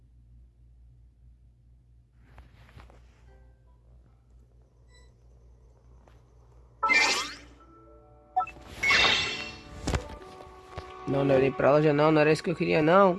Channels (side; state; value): both; identical; correlation 1.00